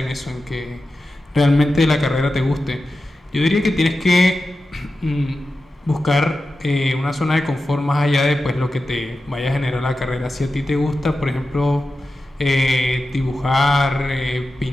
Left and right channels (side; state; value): both; normal; correlation 0.92